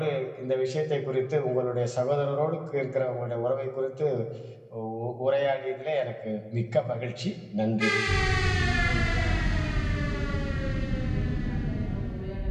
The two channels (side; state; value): both; identical; correlation 1.00